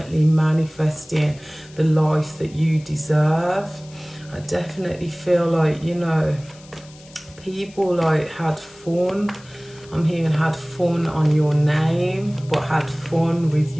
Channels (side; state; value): left; noise; hiss, 23 dB below the sound